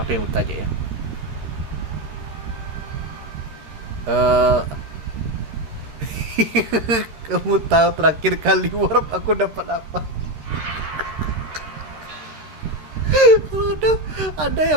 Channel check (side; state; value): left; late; 13 ms